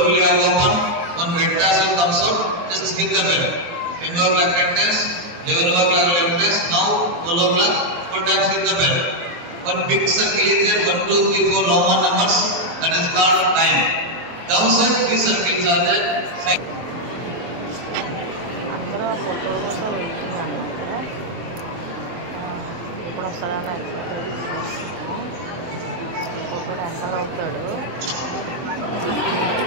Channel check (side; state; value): left; late; 23 ms